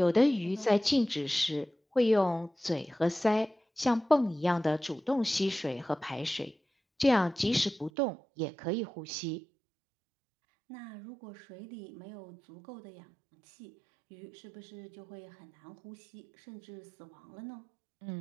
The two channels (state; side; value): drops out; left; at 7.9 s